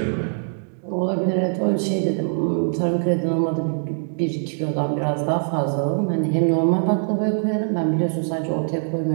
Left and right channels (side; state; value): left; silent; digital silence